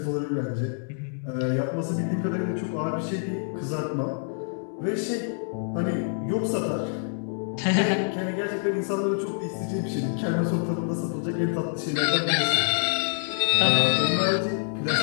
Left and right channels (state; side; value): silent; right; 61 dB below the other